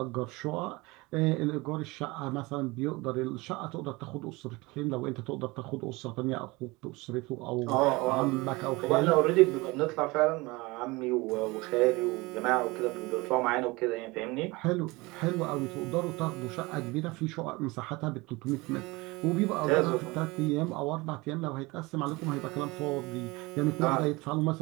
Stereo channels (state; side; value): quieter; left; 23.3 dB